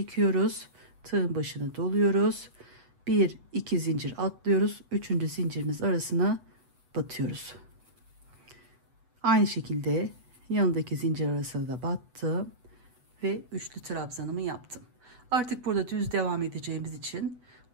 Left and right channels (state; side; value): late; left; 8.1 ms